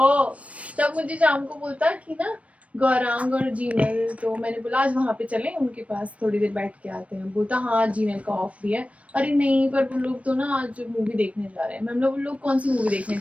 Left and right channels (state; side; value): late; left; 0.064 ms